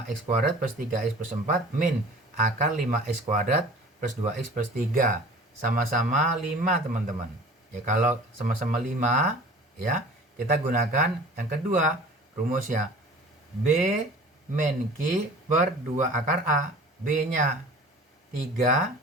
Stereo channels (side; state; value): both; normal; correlation 0.44